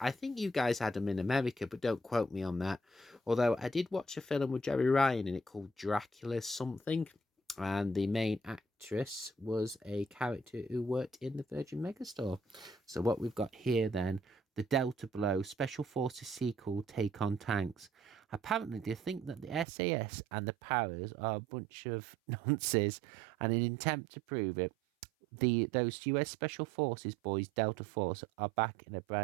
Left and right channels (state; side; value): drops out; left; at 19.7 s